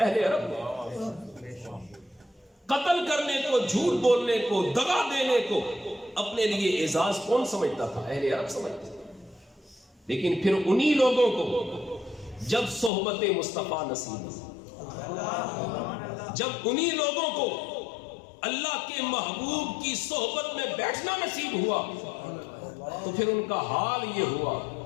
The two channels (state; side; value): drops out; right; at 12.9 s